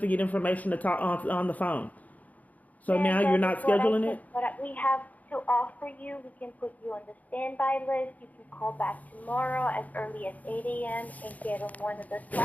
get information to talk on the phone. So now you're not scheduling it? What we have to offer you, we can put you on the standby list. You can call back tomorrow as early as 8 a.m. and get on one of the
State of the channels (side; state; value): right; late; 0.076 ms